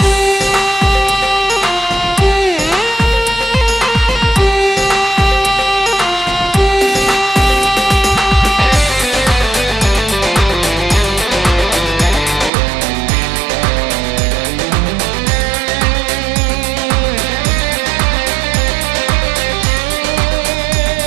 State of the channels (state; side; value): drops out; left; at 12.5 s